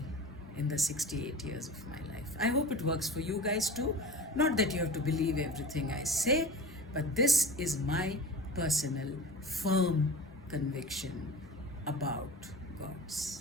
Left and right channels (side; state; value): both; normal; correlation 0.35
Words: in the 68 years of my life. I hope it works for you guys too. Not that you have to believe everything I say, but this is my personal, firm conviction about